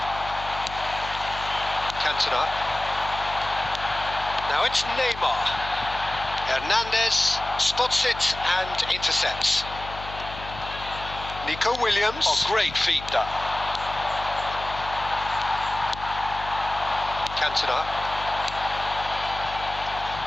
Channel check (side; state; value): left; noise; hum, 13 dB below the sound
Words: Cantona. Now it's Neymar. Hernandez spots it and intercepts. Nico Williams. Oh, great feat, that. Cantona.